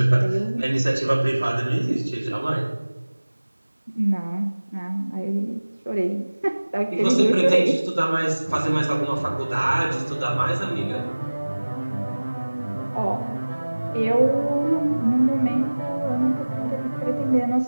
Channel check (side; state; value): both; inverted; correlation -1.00